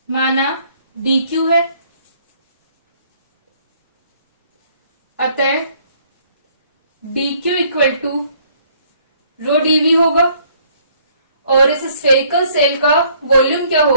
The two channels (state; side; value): inverted; both; correlation -0.63